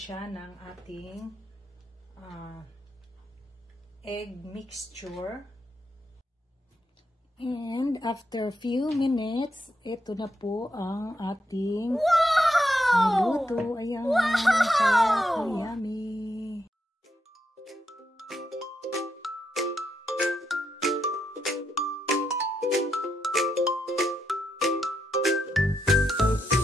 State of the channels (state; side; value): normal; both; correlation 0.82